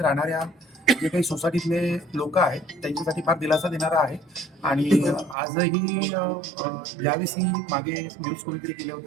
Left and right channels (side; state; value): left; drops out; at 5.4 s